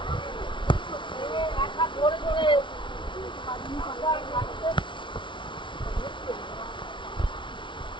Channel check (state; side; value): late; right; 0.24 ms